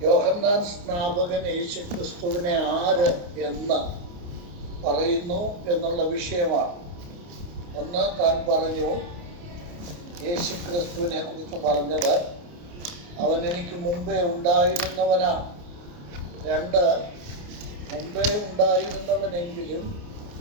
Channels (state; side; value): late; left; 29 ms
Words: യോഹന്നാൻ സ്നാപകൻ യേശുക്രിസ്തുവിനെ ആര് എന്ന് പറയുന്നു എന്നുള്ള വിഷയമാണ്. ഒന്ന്, താൻ പറഞ്ഞു യേശുക്രിസ്തുവിനെ കുറിച്ച് പറഞ്ഞത് അവൻ എനിക്ക് മുമ്പേ ഉണ്ടായിരുന്നവനാണ്. രണ്ട്, മുമ്പേ ഉണ്ടായിരുന്നവനെങ്കിലും